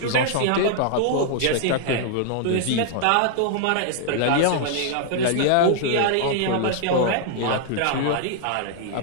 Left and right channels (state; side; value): different; both; correlation -0.01